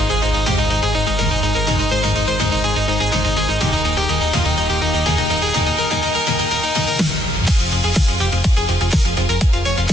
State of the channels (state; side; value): normal; both; correlation 0.72